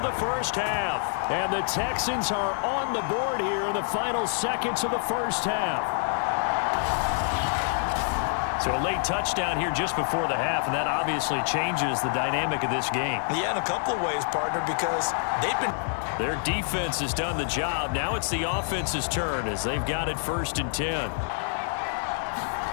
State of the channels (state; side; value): silent; right; 60 dB below the other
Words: the 1st half. And the Texans are on the board here in the final seconds of the 1st half. So a late touchdown here just before the half, and that obviously changes the dynamic of this game. Yeah, in a couple of ways, partner, because they've been... Their defense has done the job. Now it's the offense's turn as they've got it 1st and 10.